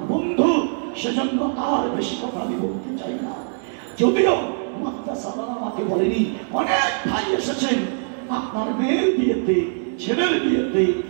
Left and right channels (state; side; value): silent; left; 64 dB below the other